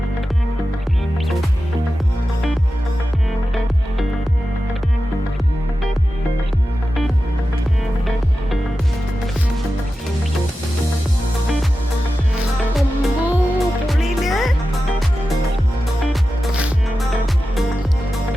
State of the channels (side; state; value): both; normal; correlation 0.92